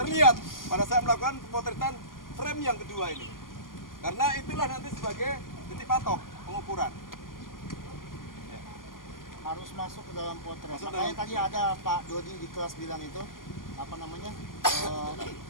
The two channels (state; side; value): late; right; 0.91 ms